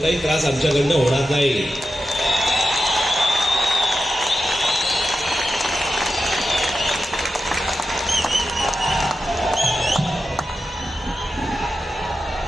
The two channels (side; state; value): both; normal; correlation 0.90